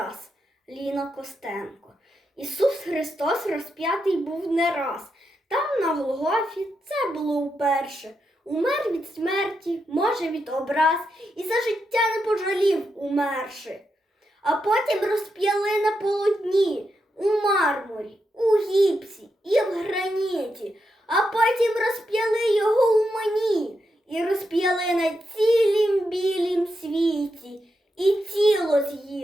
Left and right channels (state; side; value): normal; both; correlation 0.84